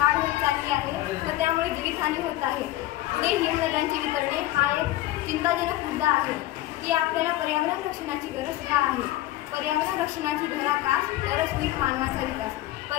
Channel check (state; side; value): quieter; right; 15.5 dB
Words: होत चालली आहे व त्यामुळे जीवितहानी होत आहे। पुढे हिमनद्यांची वितरणे हा एक चिंताजनक मुद्दा आहे की आपल्याला पर्यावरण रक्षणाची गरज का आहे। पर्यावरण रक्षणाची धराकास तरच होईल मानवाचा विकास,